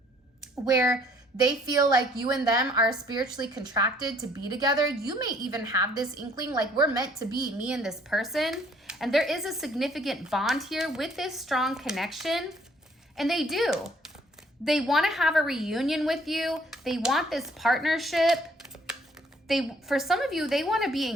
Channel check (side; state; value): both; normal; correlation 0.61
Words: where they feel like you and them are spiritually contracted to be together. You may even have this inkling like we're meant to be, me and this person. And there is a significant bond here with this strong connection. And they do. They want to have a reunion with you. They want this partnership. For some of you, they want to be